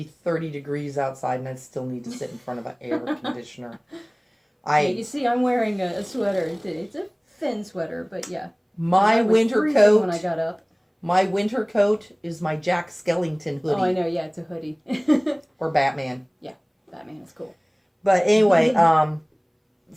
30 degrees outside, and I'd still need to sit in front of an air conditioner. Yeah, you see, I'm wearing a sweater. It's a thin sweater, but yeah. My winter coat. When I got up. My winter coat is my Jack Skellington hoodie. Oh, I know. Yeah, it's a hoodie. Or Batman. Yeah, Batman is cool. But anyway,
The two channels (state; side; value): identical; both; correlation 1.00